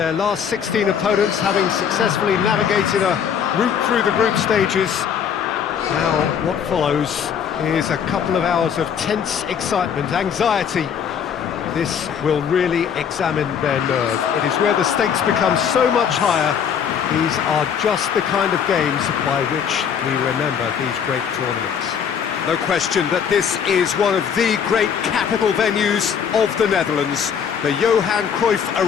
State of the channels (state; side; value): quieter; right; 7.7 dB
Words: last 16 opponents, having successfully navigated a route through the group stages. Now, what follows is a couple of hours of tense excitement, anxiety. This will really examine their nerve. It is where the stakes become so much higher. These are just the kind of games by which we remember these great tournaments. No question that this is one of the great capital venues of the Netherlands, the Johan Cruyff